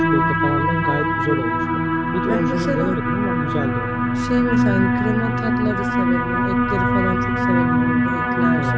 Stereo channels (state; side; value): identical; both; correlation 1.00